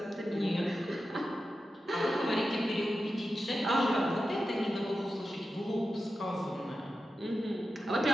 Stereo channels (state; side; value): normal; both; correlation 0.91